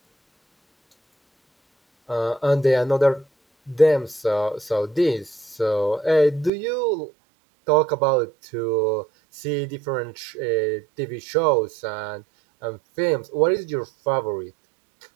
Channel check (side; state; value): left; drops out; at 6.5 s